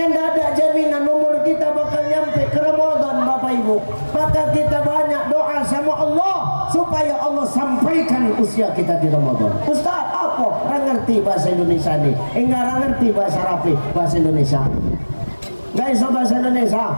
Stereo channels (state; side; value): inverted; both; correlation -1.00